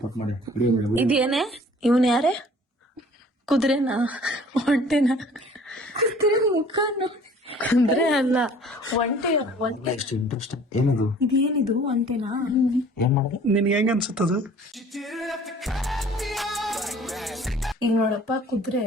ಮಾಡಿ ಇದೇನೆ ಇವನ್ ಯಾರೇ ಕುದುರೆನಾ ಒಂಟೆನಾ ಕುದುರೆ ಅಲ್ಲ ಒಂಟೆ ಒಂಟೆ ಎಷ್ಟು ಇಂಟ್ರೆಸ್ಟ್ ಏನದು ಇದೇನಿದು ಒಂಟೆನಾ ಏನ್ ಮಾಡಿದೆ ನಿನ್ಗೆ ಹೆಂಗ ಅನ್ಸುತ್ತದು? ಈಗ ನೋಡಪ್ಪ ಕುದುರೆ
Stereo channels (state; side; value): normal; both; correlation 0.51